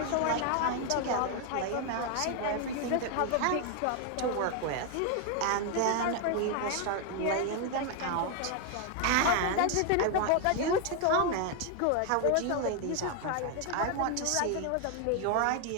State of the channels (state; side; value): different; both; correlation 0.01